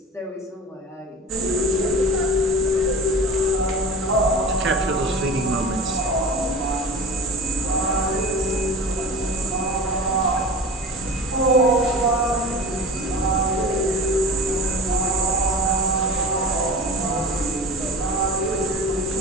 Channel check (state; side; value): normal; both; correlation 0.34